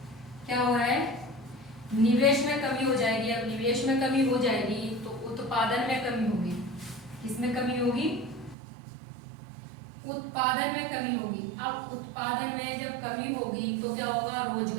क्या हो रहा है, निवेश में कमी हो जाएगी। अब निवेश में कमी हो जाएगी तो उत्पादन में कमी होगी। किसमें कमी होगी, उत्पादन में कमी होगी। अब उत्पादन में जब कमी होगी तो क्या होगा,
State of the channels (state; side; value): drops out; left; at 8.6 s